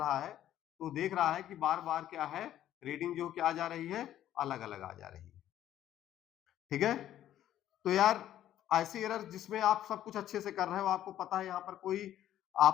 है तो देख रहा है कि बार बार क्या है, रीडिंग जो क्या आ जा रही है, अलग अलग आ जा रही है, ठीक है। तो यार ऐसी एरर जिसमें आप सब कुछ अच्छे से कर रहे हो, आपको पता है यहाँ पर कोई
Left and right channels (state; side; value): quieter; right; 12.0 dB